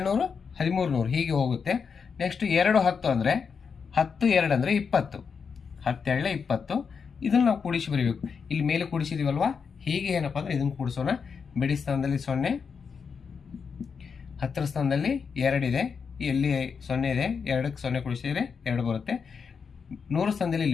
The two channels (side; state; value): right; quieter; 6.0 dB